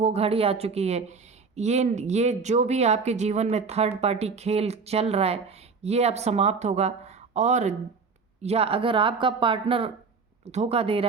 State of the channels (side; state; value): left; quieter; 4.9 dB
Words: घड़ी आ चुकी है। ये जो भी आपके जीवन में थर्ड पार्टी खेल चल रहा है, ये अब समाप्त होगा। और या अगर आपका पार्टनर धोखा दे